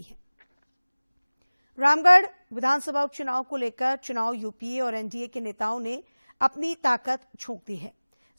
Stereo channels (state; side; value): inverted; both; correlation -1.00